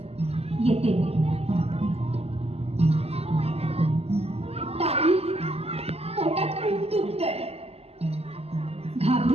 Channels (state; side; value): late; left; 0.29 ms